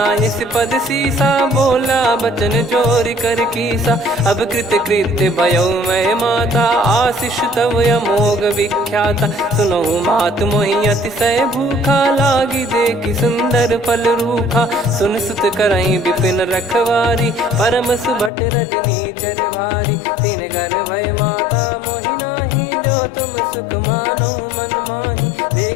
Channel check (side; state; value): right; drops out; at 18.3 s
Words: पद सीसा, बोला बचन चोरी कर कीसा। अब कृत कृत्य भयउ मैं माता, आशीष तव अमोघ विख्याता। सुनहु मात मोहि अतिशय भूखा, लागी देखि सुंदर फल रूखा। सुन सुत करहि विपिन रखवारी, परम सुभट रजनी चर भारी। तीन घर भय माता मोहि नाही, जो तुम सुख मानो मन माही।